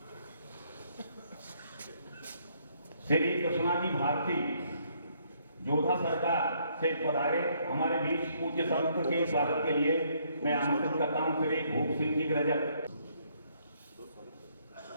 श्री कृष्णा जी भारती जोधा सरकार से पधारे हमारे बीच पूज्य संत के स्वागत के लिए मैं आमंत्रित करता हूं श्री भूप सिंह जी रजक।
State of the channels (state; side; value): inverted; both; correlation -0.69